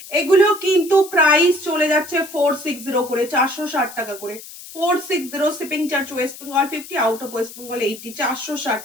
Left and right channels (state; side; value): noise; left; hiss, 15 dB below the sound